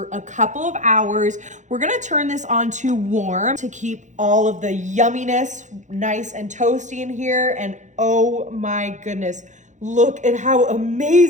a couple of hours. We're gonna turn this on to warm to keep all of the yumminess nice and toasty in here. And oh my goodness, look at how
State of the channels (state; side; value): late; left; 0.35 ms